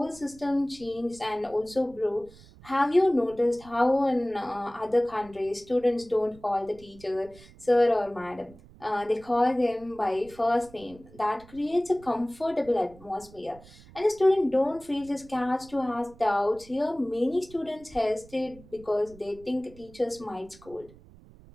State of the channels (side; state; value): right; noise; rumble, 22 dB below the sound